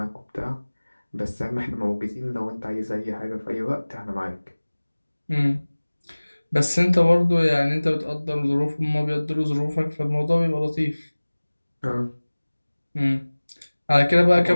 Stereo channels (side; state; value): both; inverted; correlation -1.00